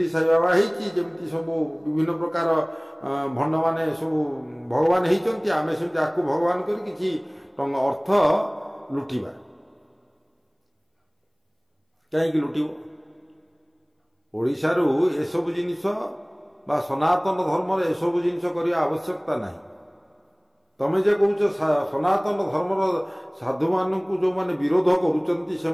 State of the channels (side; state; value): both; identical; correlation 1.00